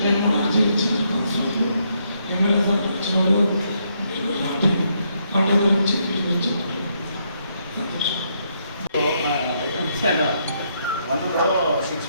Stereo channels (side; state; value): both; inverted; correlation -0.75